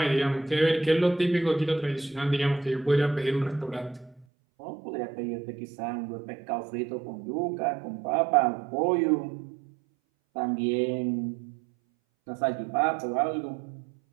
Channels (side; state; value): left; drops out; at 4.2 s